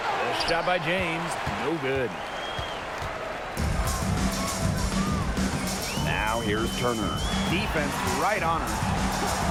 shot by James. No good. Now here's Turner. Defense right on her.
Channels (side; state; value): both; identical; correlation 1.00